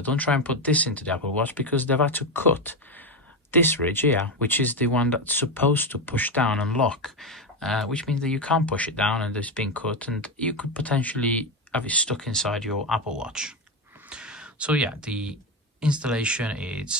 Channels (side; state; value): both; normal; correlation 0.13